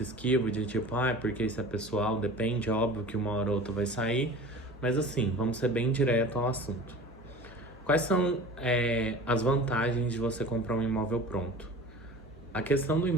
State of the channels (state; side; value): normal; both; correlation 0.39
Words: esquivo de tipo, porque isso é pessoal, depende, óbvio que uma hora ou outra vai sair. Mas assim, vamos ser bem direto ao assunto. Quais são as vantagens de você comprar um imóvel pronto? A questão do